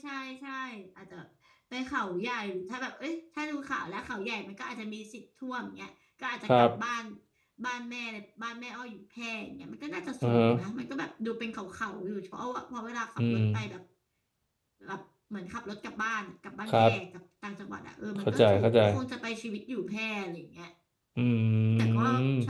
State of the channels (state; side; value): identical; both; correlation 1.00